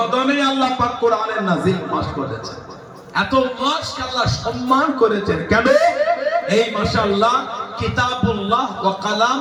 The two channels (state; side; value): identical; both; correlation 1.00